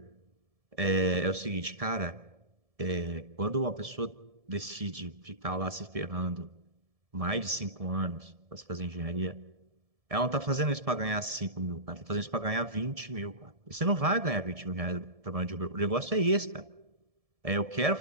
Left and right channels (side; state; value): left; late; 1.7 ms